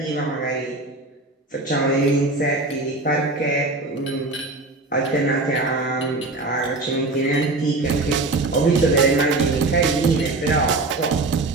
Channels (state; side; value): quieter; left; 3.1 dB